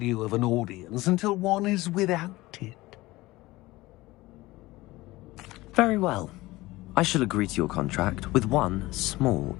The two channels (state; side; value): quieter; right; 19.4 dB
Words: of an audience until one is without it. Very well. I shall agree to your contract with one small